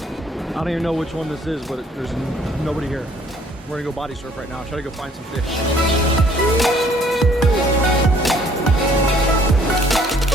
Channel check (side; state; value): both; normal; correlation 0.60